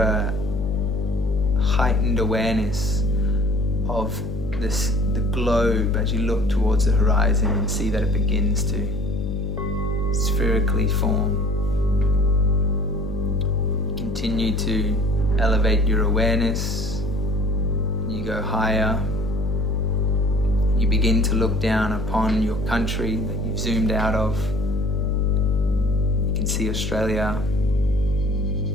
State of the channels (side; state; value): left; noise; hum, 6 dB below the sound